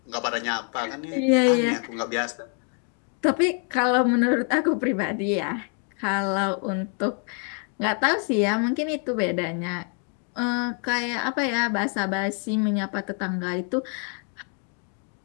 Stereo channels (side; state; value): right; quieter; 39.8 dB